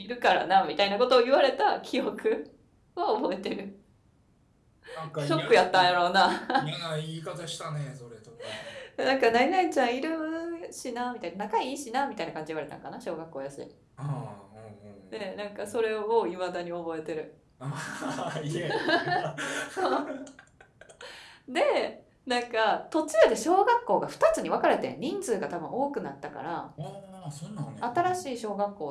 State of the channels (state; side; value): identical; both; correlation 1.00